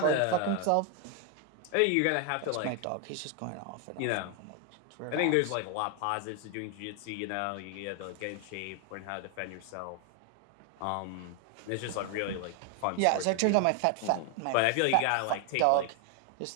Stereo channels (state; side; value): different; both; correlation 0.01